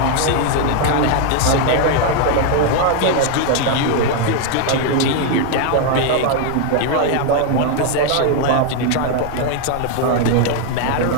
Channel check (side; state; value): both; different; correlation 0.01